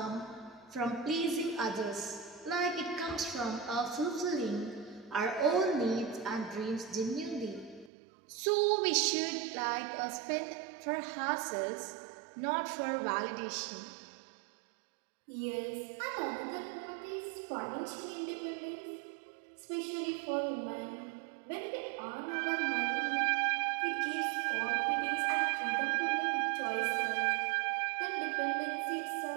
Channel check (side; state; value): left; drops out; at 7.9 s